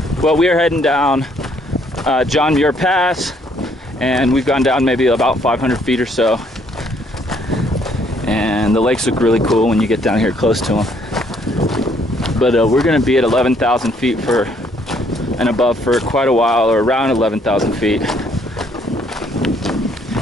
Well, we are heading down John Muir Pass, and we've gone down maybe about 500 feet or so. And the lakes look really cool when you get down here close to them. But we're gonna be at 11,000 feet and above for quite a while, or around 11,000 feet.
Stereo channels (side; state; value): both; normal; correlation 0.67